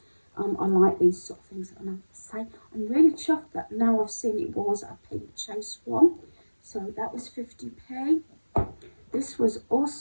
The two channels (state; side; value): inverted; both; correlation -1.00